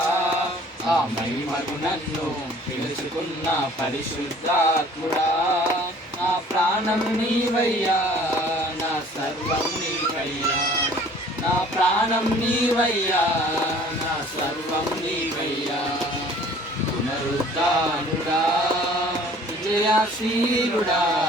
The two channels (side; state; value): both; normal; correlation 0.52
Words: ఆ మహిమకు నన్ను పిలుచుకున్న పరిశుద్ధాత్ముడా. నా ప్రాణం నీవయ్యా, నా సర్వం నీవయ్యా, నా ప్రాణం నీవయ్యా, నా సర్వం నీవయ్యా. పునరుద్ధానుడా, విజయశీలుడా,